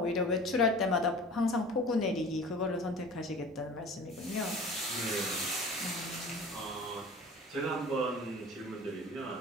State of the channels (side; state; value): both; normal; correlation 0.41